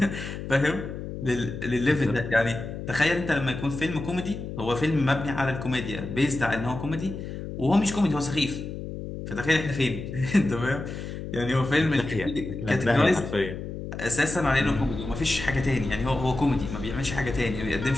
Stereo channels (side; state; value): left; noise; hum, 8 dB below the sound